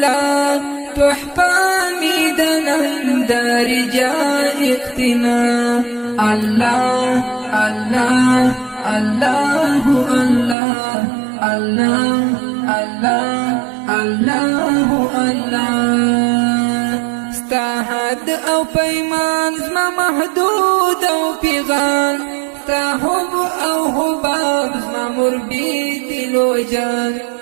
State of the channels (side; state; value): left; drops out; at 10.6 s